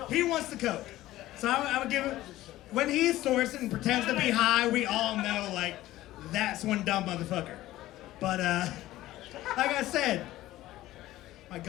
he wants the coke. So I would give him, when he snorts it and pretends to be high, we all know, like, that's one dumb motherfucker. But, like I said, my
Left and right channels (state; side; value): quieter; right; 15.7 dB